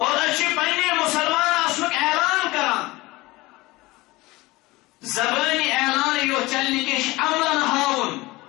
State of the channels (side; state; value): right; quieter; 20.9 dB